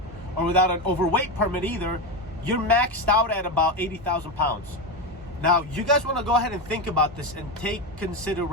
or without an overweight permit either, you're maxed out at about 80,000 pounds. Now you guys want to go ahead and think about this and take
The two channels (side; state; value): both; normal; correlation 0.15